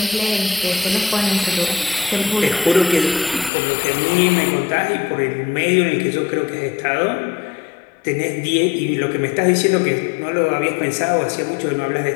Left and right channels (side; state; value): right; drops out; at 3.5 s